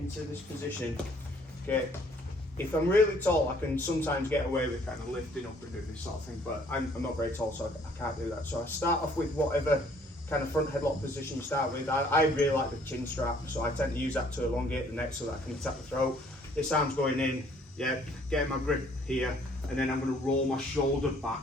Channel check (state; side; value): normal; both; correlation 0.60